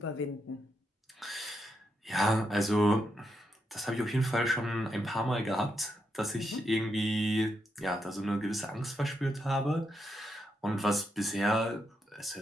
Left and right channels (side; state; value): both; normal; correlation 0.82